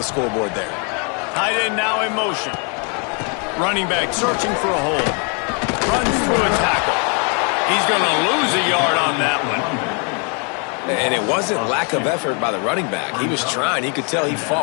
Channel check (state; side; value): quieter; right; 37.1 dB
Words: scoreboard there. Tight end now in motion. Running back searching for a hole. Runs through a tackle. He's going to lose a yard on that one. And it wasn't lack of effort by the running back. He was trying. He could tell he